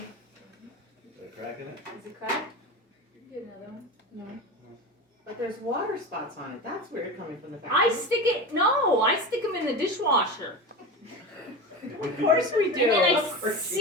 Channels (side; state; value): both; normal; correlation 0.26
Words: They're cracking it? Is it cracked? Get another one. But there's water spots on it. That's weird coming from the back. I stick them in the dishwasher. Of course we do. And then Of I course we